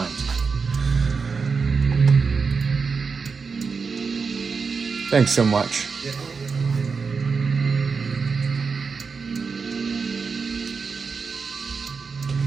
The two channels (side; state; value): left; quieter; 5.1 dB